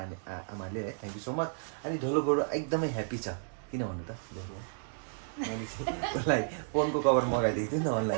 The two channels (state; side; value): silent; left; 56 dB below the other